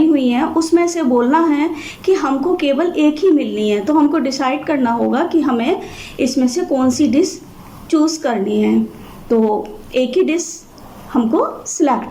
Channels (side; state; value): both; identical; correlation 1.00